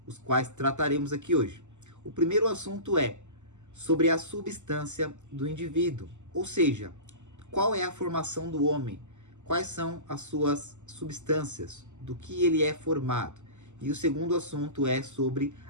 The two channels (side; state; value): left; late; 0.84 ms